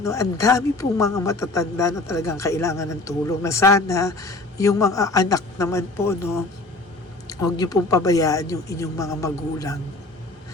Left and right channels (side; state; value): right; quieter; 3.0 dB